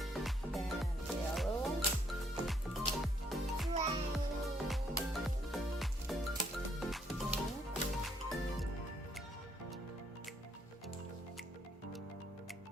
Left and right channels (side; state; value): both; normal; correlation 0.70